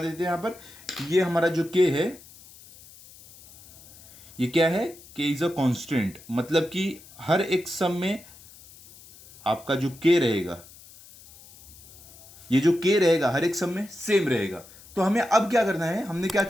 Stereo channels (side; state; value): left; noise; hiss, 21 dB below the sound